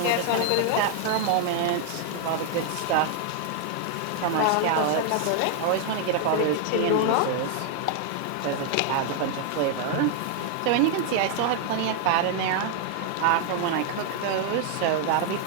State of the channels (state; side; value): different; both; correlation 0.00